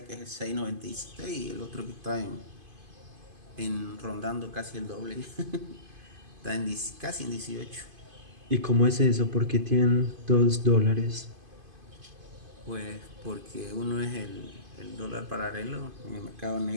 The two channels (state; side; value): late; left; 2.5 ms